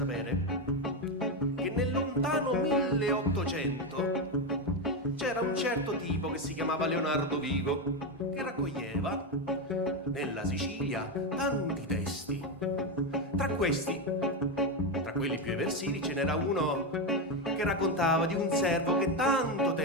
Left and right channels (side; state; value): both; normal; correlation 0.10